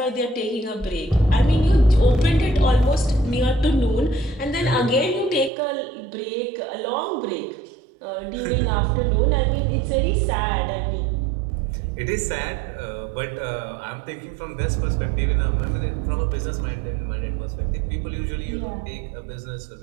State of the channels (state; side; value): drops out; left; at 5.5 s